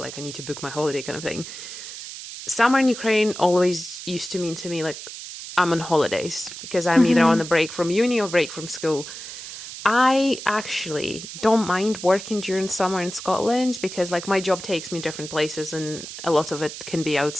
I need to book my holiday kind of thing. Summer in Ukraine always used to mean to me like I'm on holidays, because I'm either on a break from uni or break from school. I actually don't mind working during summer in Scotland because like my job takes me different places and a lot of it can be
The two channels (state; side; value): noise; right; hiss, 11 dB below the sound